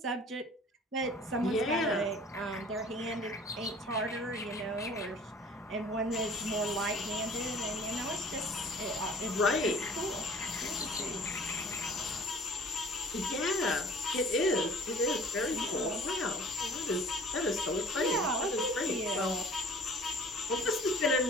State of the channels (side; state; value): both; normal; correlation 0.49